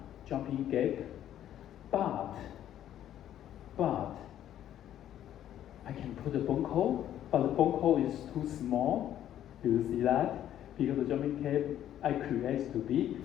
jumping gap, but I can put the bone core, but the bone core is too small. Do you see that? Because the jumping gap I create to be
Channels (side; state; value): right; quieter; 11.4 dB